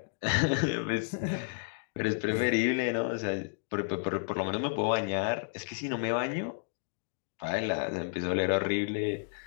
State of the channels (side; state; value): right; silent; digital silence